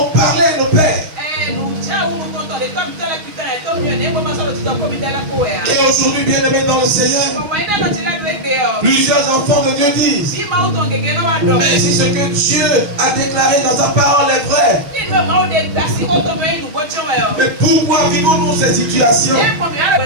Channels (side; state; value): left; late; 6.4 ms